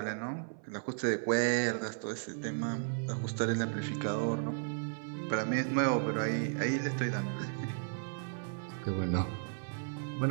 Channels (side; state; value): left; silent; 55 dB below the other